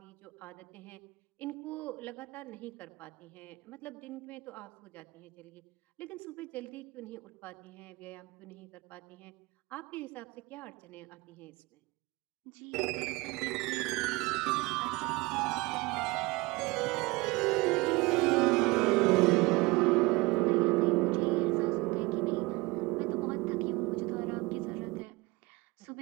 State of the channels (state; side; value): quieter; left; 23.5 dB